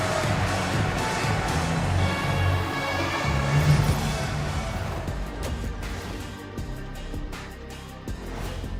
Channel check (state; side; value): identical; both; correlation 1.00